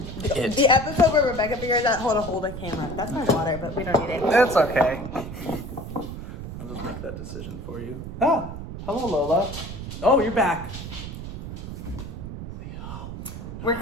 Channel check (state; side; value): noise; right; rumble, 9 dB below the sound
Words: The episode where Rebecca figures out how to hold a camera. That's my water, but we don't need it. It's okay. I'll just make that decision for you. Oh, hello Lola. Oh, you're back. We're